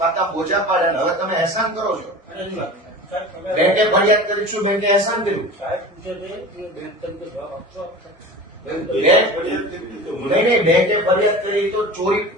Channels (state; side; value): normal; both; correlation 0.35